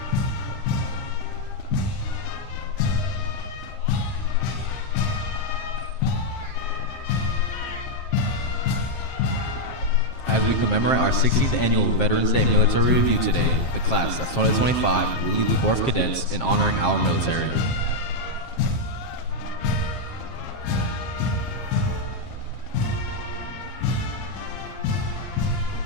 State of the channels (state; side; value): late; right; 7.5 ms